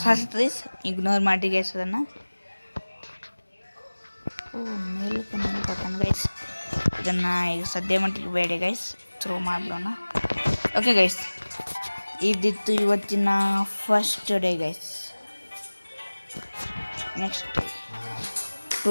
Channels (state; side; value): inverted; both; correlation -1.00